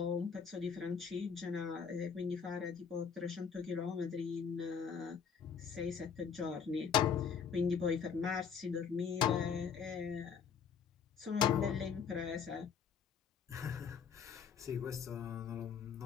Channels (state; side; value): quieter; right; 6.8 dB